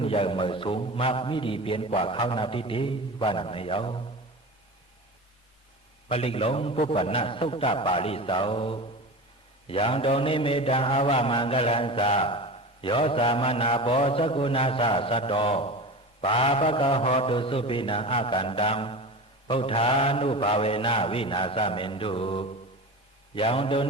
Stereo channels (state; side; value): normal; both; correlation 0.30